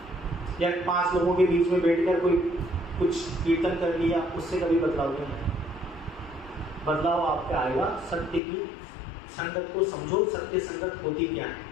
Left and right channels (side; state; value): right; drops out; at 8.4 s